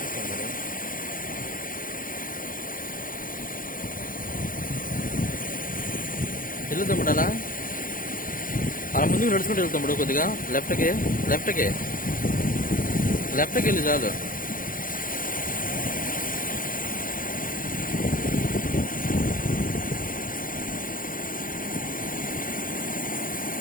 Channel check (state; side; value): late; right; 0.40 ms